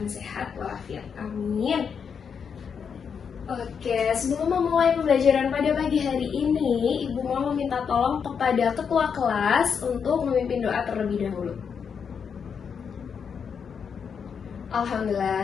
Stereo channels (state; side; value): quieter; right; 6.7 dB